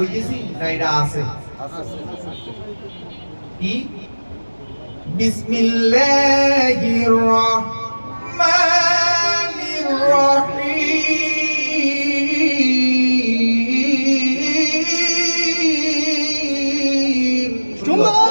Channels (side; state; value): both; inverted; correlation -1.00